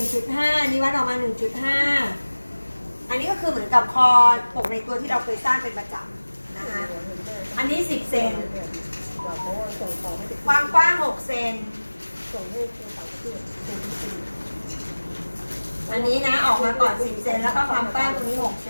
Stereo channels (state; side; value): inverted; both; correlation -1.00